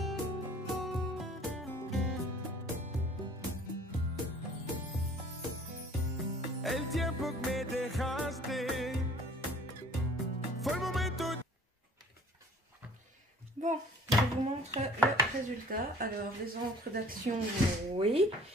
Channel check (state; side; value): normal; both; correlation 0.52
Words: El tiempo que me dejaste fue el momento. Bon, je vous montre le résultat. Alors, les encres d'Action, oui